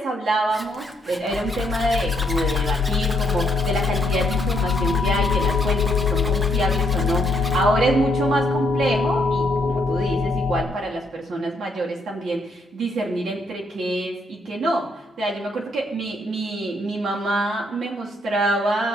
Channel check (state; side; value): normal; both; correlation 0.74